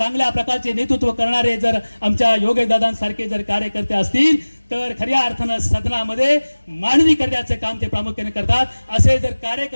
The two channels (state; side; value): inverted; both; correlation -1.00